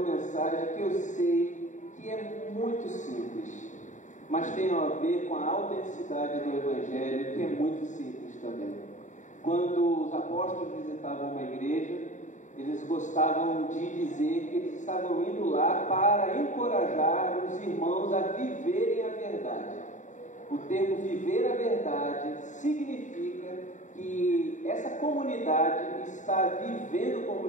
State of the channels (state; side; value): late; right; 0.36 ms